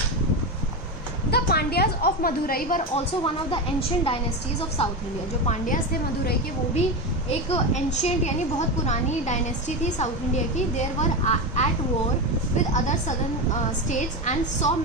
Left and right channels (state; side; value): normal; both; correlation 0.17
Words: The Pandyas of Madurai were also one of the ancient dynasties of South India. जो पांड्यास थे मदुरई के, वो भी एक एंशियंट यानी बहुत पुरानी डायनेस्टी थी साउथ इंडिया की. There were at war with other southern states and saw